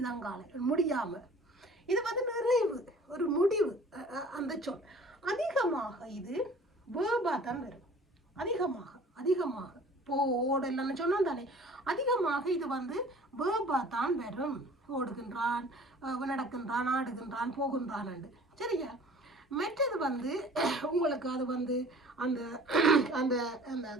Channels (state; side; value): normal; both; correlation 0.48